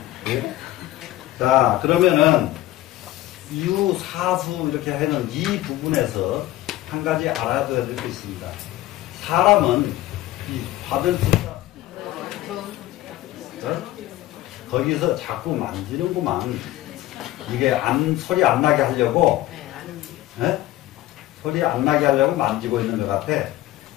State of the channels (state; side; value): quieter; right; 15.5 dB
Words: 자, 그러면은 유사수 이렇게 하는 이 부분에서 한 가지 알아둬야 될 게 있습니다. 사람은 이 받을 숫자 거기서 자꾸 만지는구만. 이게 소리 안 나게 하려고 소리 안 나게 하려고 만지고 있는 것 같아.